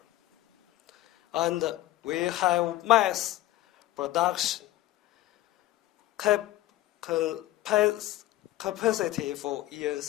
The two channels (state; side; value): quieter; right; 15.4 dB